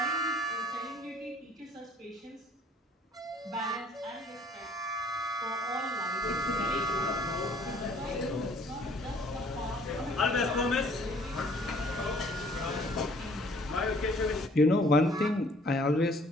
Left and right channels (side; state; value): both; normal; correlation 0.58